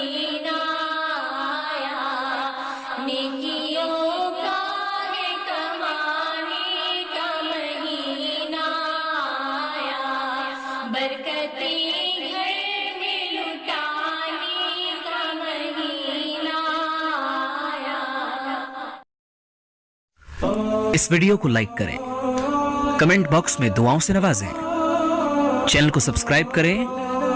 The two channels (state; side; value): identical; both; correlation 1.00